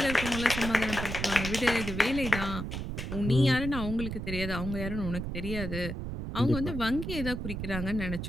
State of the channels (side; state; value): right; noise; rumble, 5 dB below the sound